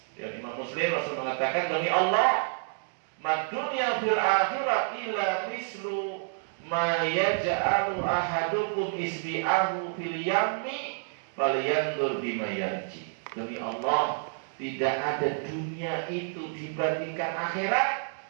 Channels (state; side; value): silent; left; digital silence